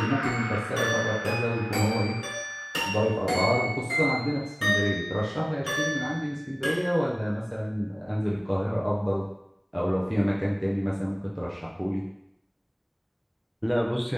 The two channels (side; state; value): both; identical; correlation 1.00